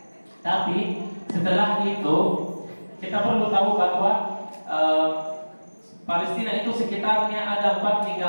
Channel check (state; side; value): inverted; both; correlation -1.00